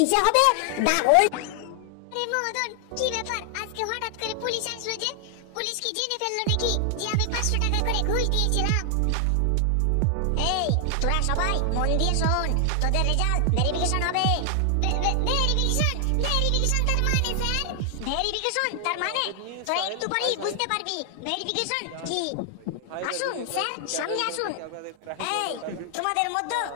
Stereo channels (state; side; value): different; both; correlation 0.00